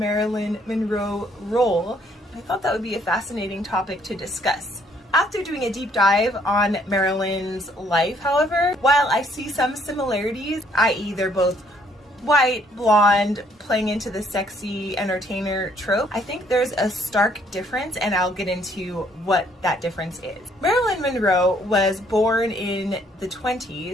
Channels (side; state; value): both; normal; correlation 0.65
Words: Monroe role. I thought that would be a fascinating topic to discuss. After doing a deep dive on Marilyn's life, however, while I see some similarities, i.e. they're both white, blonde, playing into the sexy entertainer trope, I think there's a stark difference, and I'll get into what that difference is. Marilyn Monroe was born in the